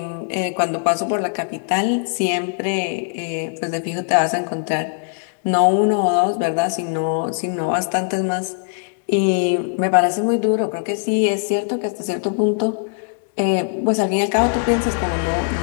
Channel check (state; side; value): silent; right; digital silence